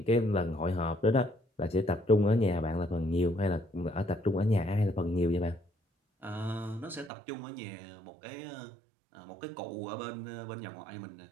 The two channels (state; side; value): drops out; left; at 7.1 s